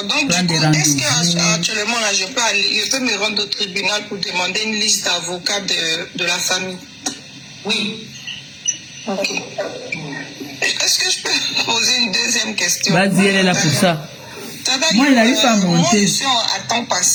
Donc, prendre des est-ce rendez-vous. qu'actuellement, là, je peux me rendre au tribunal pour demander une liste d'avocats de la famille? Oui. Ok. Est-ce que je peux poser une deuxième question? Vas-y, elle est là pour ça. Moi, il n'arrive pas à monter. Moi, je suis à temps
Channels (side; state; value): both; identical; correlation 1.00